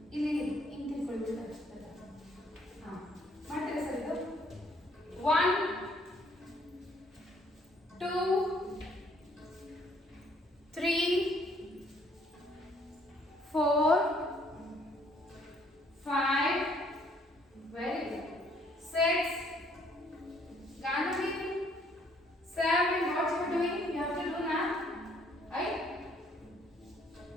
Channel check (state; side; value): normal; both; correlation 0.64